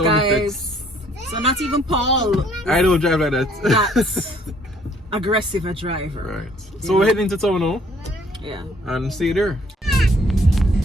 guys. effects. So not even Paul. I don't drive like that. That's aggressive a driver. Right. So we're heading to town now Yeah. and see you there.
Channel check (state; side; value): normal; both; correlation 0.61